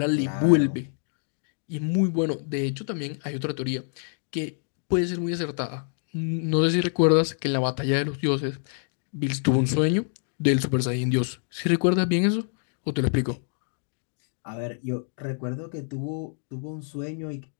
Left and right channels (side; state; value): right; silent; digital silence